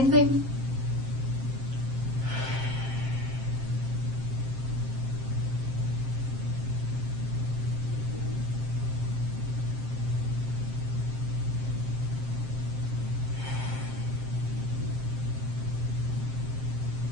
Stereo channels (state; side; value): late; left; 7.6 ms